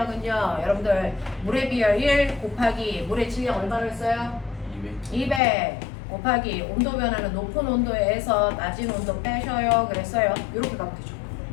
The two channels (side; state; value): right; drops out; at 5.4 s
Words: 여러분들 물에 비하 1 곱하기 물의 질량 얼마를 써요? 200 곱하기 온도 변화는 높은 온도에서 낮은 온도 빼셔요. 그랬어요. 이렇게 가면 되죠.